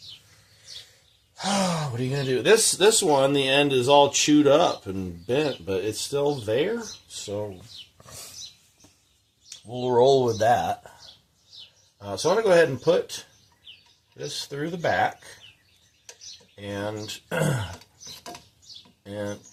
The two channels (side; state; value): both; identical; correlation 1.00